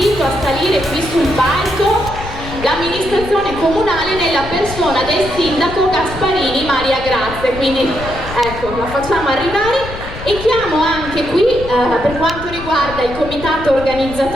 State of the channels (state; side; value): noise; left; rumble, 11 dB below the sound